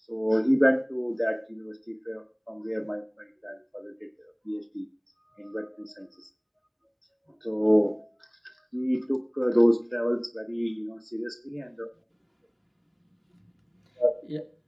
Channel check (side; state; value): both; identical; correlation 1.00